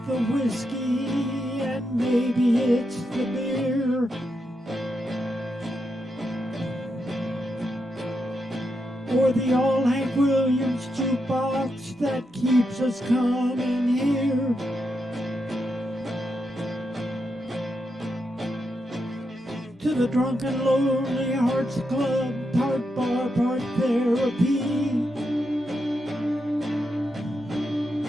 the whiskey and maybe it's the beer. Or the old Hank Williams jukebox that keeps us coming here. To to the Drunken Lonely Hearts Club, part bar, part therapy.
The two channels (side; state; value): both; normal; correlation 0.84